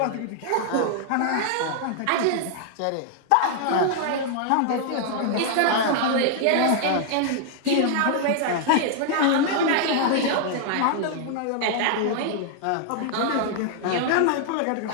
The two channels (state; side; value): different; both; correlation -0.01